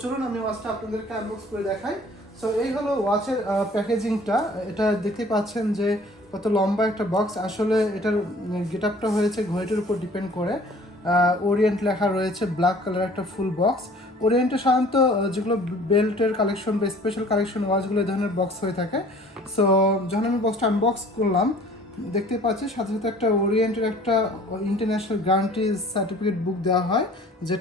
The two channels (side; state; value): both; normal; correlation 0.51